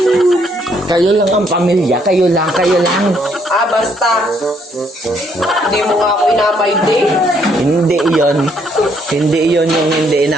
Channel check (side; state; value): both; normal; correlation 0.69